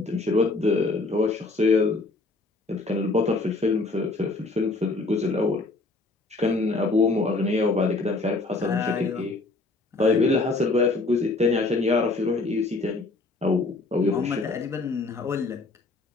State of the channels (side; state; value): right; quieter; 3.4 dB